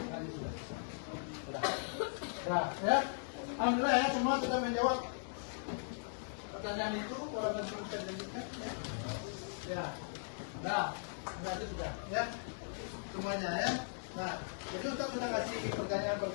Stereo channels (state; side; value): silent; right; digital silence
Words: Nah, ya. Alhamdulillah ya, semua sudah menjawab pertanyaan itu. Kalau nanti bisa dilanjutkan, ya. Nah, itu sudah, ya. Semuanya ya. Nah, itu Ustaz sudah kasih